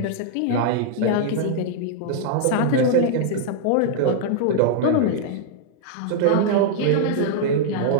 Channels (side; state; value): both; different; correlation -0.01